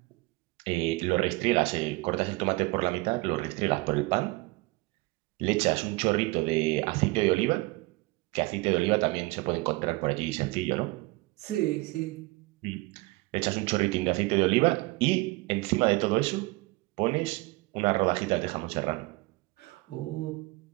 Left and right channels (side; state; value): left; quieter; 23.0 dB